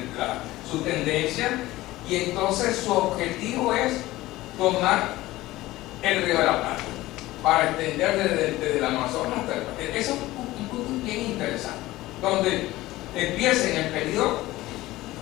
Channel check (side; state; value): right; quieter; 17.5 dB